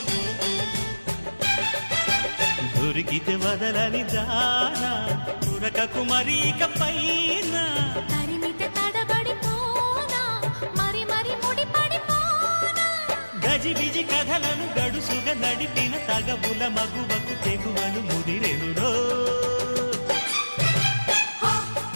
దొరికితే వదలని దానా ఉరకకు మరీక పైన తరిమితే తడబడిపోనా మరి మరి ముడిపడిపోనా గజిబిజి కథలను గడుసుగా నడిపిన తగవుల మగువకు తెగువను ముదిరెనురో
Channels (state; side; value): inverted; both; correlation -1.00